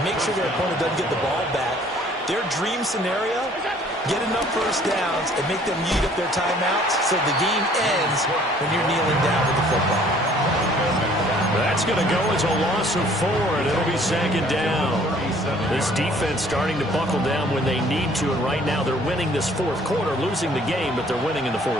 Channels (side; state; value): both; normal; correlation 0.57